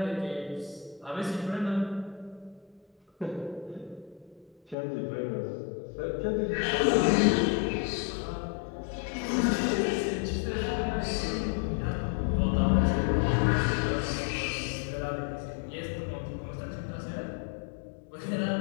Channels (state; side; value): drops out; right; at 4.8 s